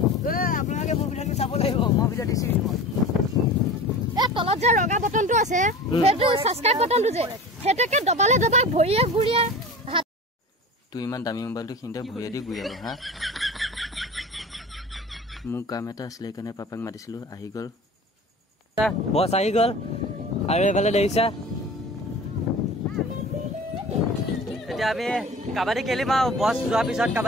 আপোনালোকে মোৰ ভিডিঅ'টো চাব লাগিব মই ভিডিঅ' দিছো তলত যে ৰঙা বটনটো আছে সেইটো সাবস্ক্ৰাইব বটনটো যে হেতেকে দবালে দবা ভৰিয়ে ঘুৰিয়ে তুই ইমান দামী মোবাইলটো খিনতে ভৰিয়ে দি ঘূৰিব হা মোৰ কাম এটা আছিলে কাৰণে পাপাক মাতিছিলো আহি গ'ল বছ আহি গ'ল আৰু এইফালে দেখিছা এতিয়া আমি কাবাডী খেলিম আৰু বছ যোৱাৰ পিছত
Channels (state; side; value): normal; both; correlation 0.36